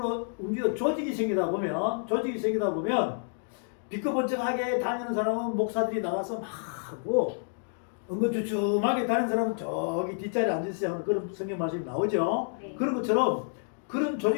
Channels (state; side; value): silent; right; digital silence